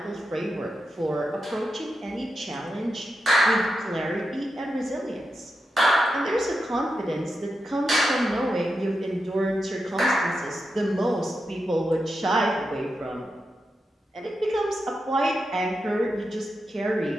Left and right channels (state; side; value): normal; both; correlation 0.88